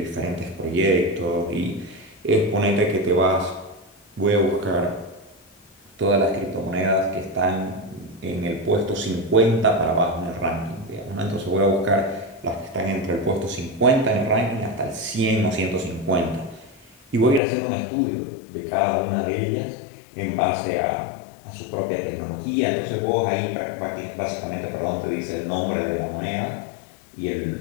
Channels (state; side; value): drops out; right; at 17.4 s